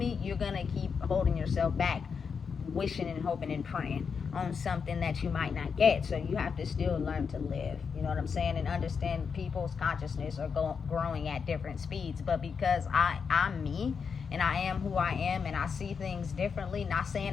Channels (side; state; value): right; quieter; 6.0 dB